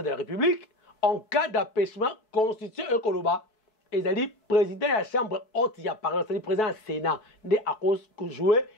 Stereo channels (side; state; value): right; late; 4.6 ms